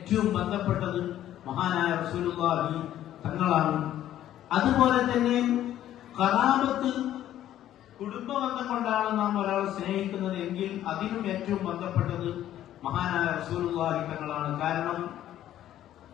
ബന്ധപ്പെട്ടത് മഹാനായ റസൂലുള്ളാഹി തങ്ങളാണ്. അതുപോലെ തന്നെ ഖറാബത്ത്, കുടുംബബന്ധം കൊണ്ടാണ് നാം ഒരാളെ സ്നേഹിക്കുന്നത് എങ്കിൽ അതിനും ഏറ്റവും ബന്ധപ്പെട്ടത് മഹാനായ റസൂലുള്ളാഹി തങ്ങളാണ്. കാരണം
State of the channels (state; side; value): quieter; right; 12.2 dB